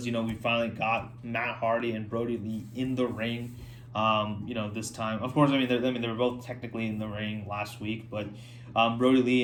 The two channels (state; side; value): identical; both; correlation 1.00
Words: we finally got Matt Hardy and Brody Lee in the ring. This time, of course, they were both technically in the ring last week, but Brody Lee